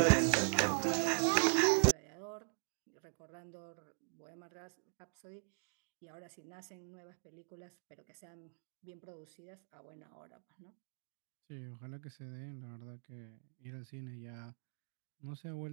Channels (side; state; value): left; silent; digital silence